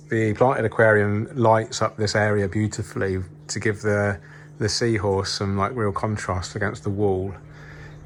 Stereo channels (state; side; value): identical; both; correlation 1.00